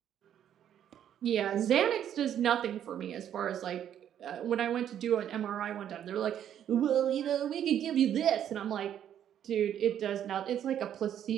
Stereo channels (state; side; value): quieter; left; 10.1 dB